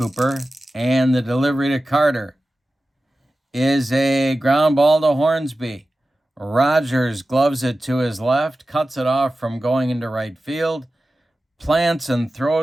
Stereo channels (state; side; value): normal; both; correlation 0.94